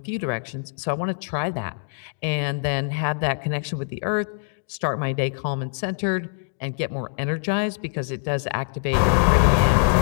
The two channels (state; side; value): silent; right; digital silence